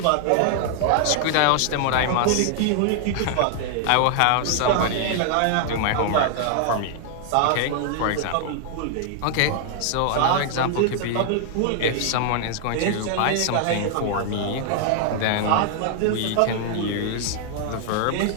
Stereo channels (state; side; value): different; both; correlation 0.00